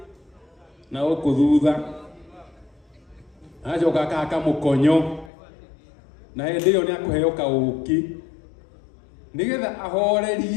na gũkũ thutha, acoka akahaka mũkonyo, na hĩndĩ ĩyo nĩ akũheo kaũki nĩgetha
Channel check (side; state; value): right; drops out; at 5.3 s